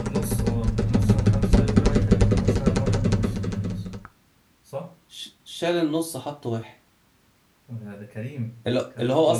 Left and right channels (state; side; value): identical; both; correlation 1.00